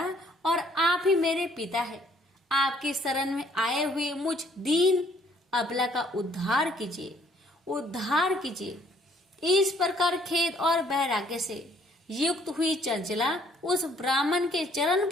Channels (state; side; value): normal; both; correlation 0.63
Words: और आप ही मेरे पिता है। आपके शरण में आए हुए मुझ दीन अबला का उद्धार कीजिए, उद्धार कीजिए। इस प्रकार खेद और वैराग्य से युक्त हुई चंचला उस ब्राह्मण के चरण